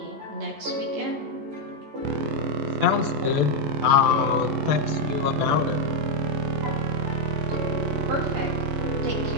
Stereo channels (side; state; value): left; late; 14 ms